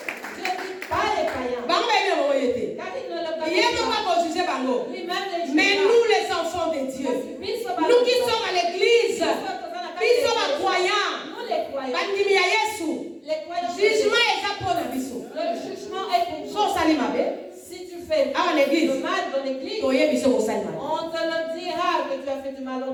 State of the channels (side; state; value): both; identical; correlation 1.00